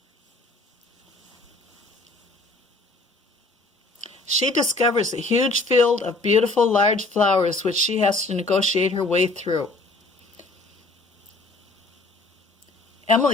She discovers a huge field of beautiful large flowers which she has to negotiate her way through.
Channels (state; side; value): quieter; right; 3.0 dB